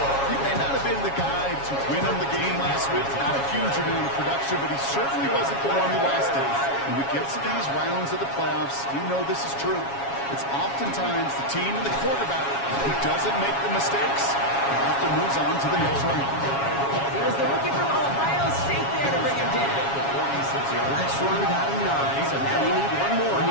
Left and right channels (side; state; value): right; late; 7.2 ms